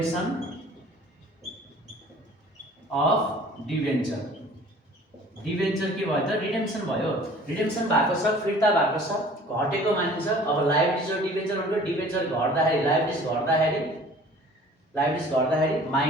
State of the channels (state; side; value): normal; both; correlation 0.49